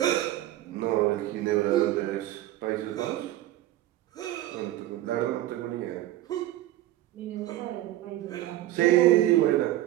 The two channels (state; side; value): quieter; left; 14.6 dB